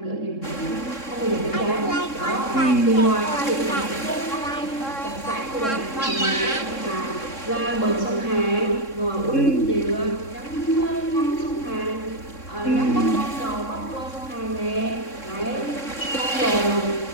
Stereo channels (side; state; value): right; late; 3.7 ms